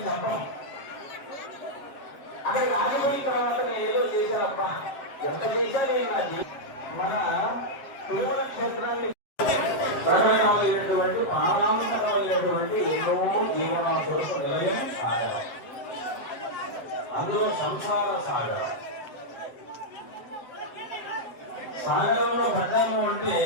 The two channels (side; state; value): right; late; 7.6 ms